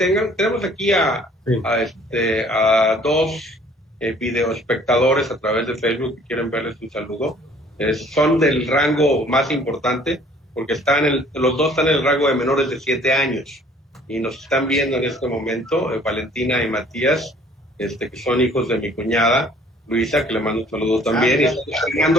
aquí a 2 videoespectadores a través de Facebook que quieren verles un saludo. Son del rango más importante, porque los 2 están en el rango de menores de 7 años y nos están viendo en este momento, Valentina y Matías, que son hijos de mi cuñada Luisa, que le mando un saludo también. Y están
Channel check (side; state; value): both; normal; correlation 0.56